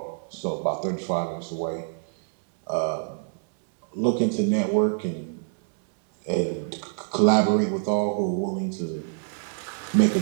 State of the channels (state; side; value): silent; left; digital silence